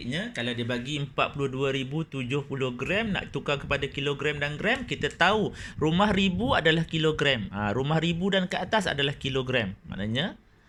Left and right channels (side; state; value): both; identical; correlation 1.00